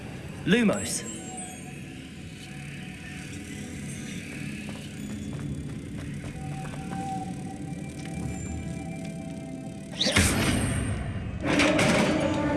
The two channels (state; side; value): identical; both; correlation 1.00